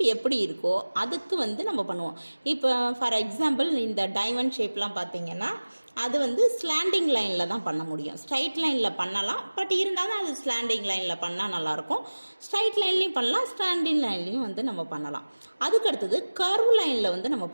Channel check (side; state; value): both; inverted; correlation -1.00